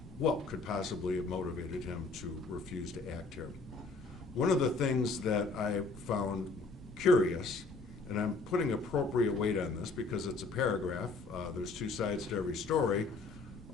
what could possibly have motivated him to refuse to act here. One of the things that I found curious, and I'm putting appropriate weight on this because it's a paragraph, there's two sides to every story,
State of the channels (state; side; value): quieter; right; 3.8 dB